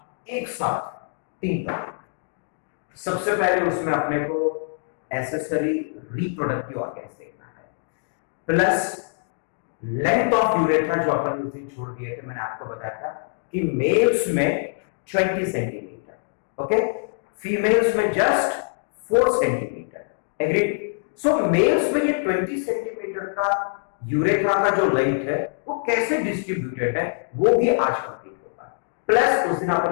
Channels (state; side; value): silent; right; digital silence